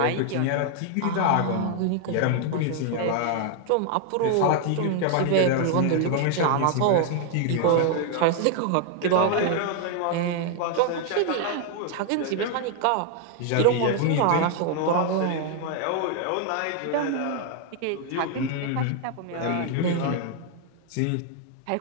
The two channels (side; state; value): both; different; correlation 0.00